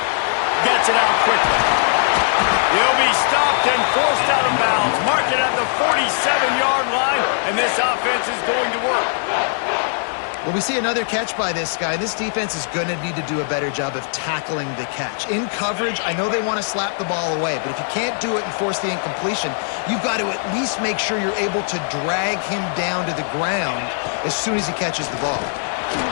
Gets it out quickly. He'll be stopped and forced out of bounds. Mark it at the 47-yard line, and this offense is going to work. Well, we see another catch by this guy. This defense is going to need to do a better job of tackling the catch. In coverage, I know they want to slap the ball away, but if you can't do it and force the incompletion, you've got to at least make sure you're able to drag him down to the ground as soon as he catches the ball.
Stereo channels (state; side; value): silent; right; digital silence